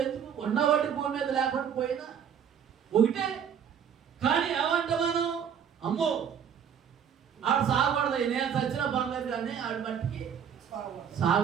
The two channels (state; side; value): quieter; left; 8.1 dB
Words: ఎందుకు ఉన్నవాటి భూమి మీద లేకుండా పోయినా ఒకటే. కానీ ఏమంటే మనం అమ్మో ఆడు సాగకూడదు, నేను చచ్చిన పర్లేదు కానీ ఆడి మట్టికి